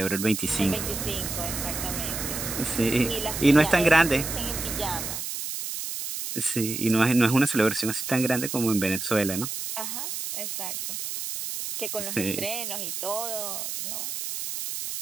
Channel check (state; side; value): noise; right; hiss, 5 dB below the sound